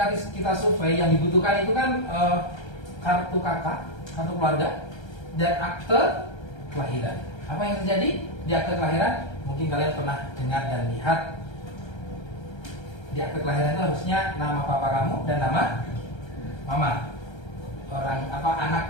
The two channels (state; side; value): late; right; 1.3 ms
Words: kita survei yang dibutuhkan itu kan kartu kakak, kartu keluarga, dan akte kelahiran. Apa yang terjadi di akte kelahiran? Mungkin kalian pernah dengar dan lihat. Di akte kelahiran itu harusnya nama papa kamu dan nama mama. Orang anak